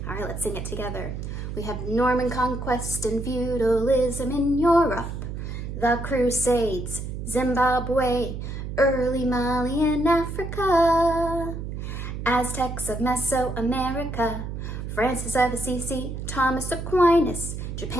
All right, let's sing it together. We have Norman conquest and feudalism in Europe, the Crusades, Zimbabwe, early Mali in Africa, Aztecs of Mesoamerica, Francis of Assisi, Thomas Aquinas,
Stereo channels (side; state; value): right; noise; hum, 6 dB below the sound